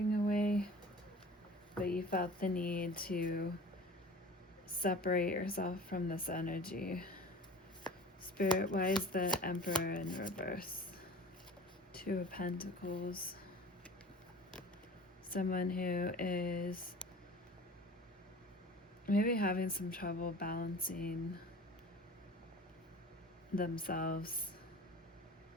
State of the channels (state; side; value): normal; both; correlation 0.41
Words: away, but you felt the need to separate yourself from this energy. Spirit, why is the Emperor in reverse? Two of Pentacles. Someone who is maybe having some trouble balancing themselves,